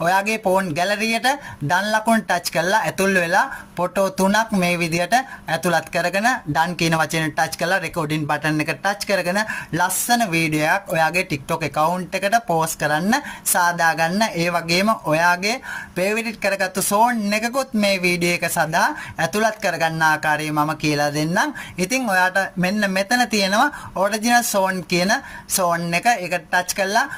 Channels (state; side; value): identical; both; correlation 1.00